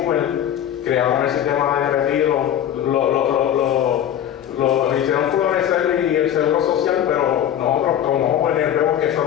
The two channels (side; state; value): right; quieter; 10.4 dB